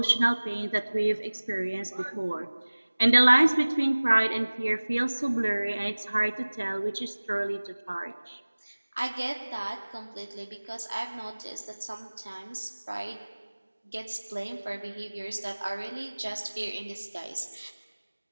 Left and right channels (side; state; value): both; inverted; correlation -1.00